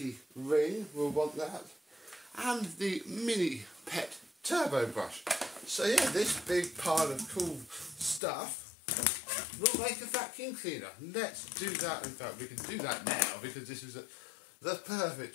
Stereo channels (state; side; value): drops out; right; at 8.2 s